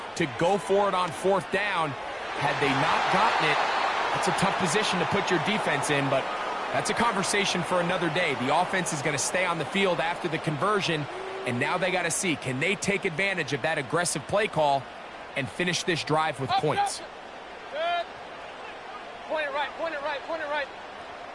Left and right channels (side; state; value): both; identical; correlation 1.00